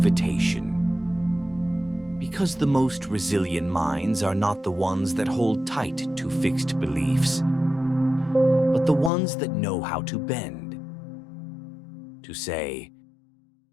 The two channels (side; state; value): right; drops out; at 9.1 s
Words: Because the most resilient minds are not the ones that hold tight to fixed beliefs, but the ones that know how to bend. To say,